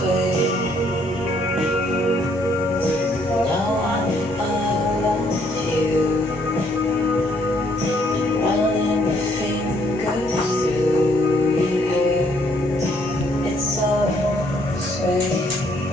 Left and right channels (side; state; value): both; normal; correlation 0.67